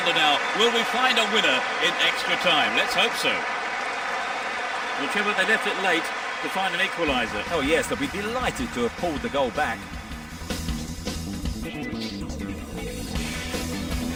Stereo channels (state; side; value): identical; both; correlation 1.00